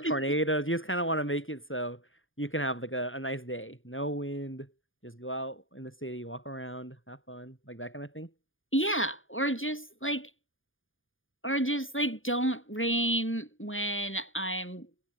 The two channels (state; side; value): late; right; 0.58 ms